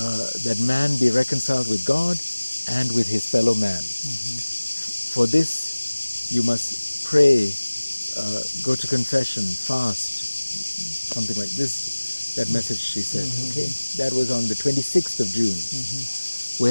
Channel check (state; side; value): inverted; both; correlation -1.00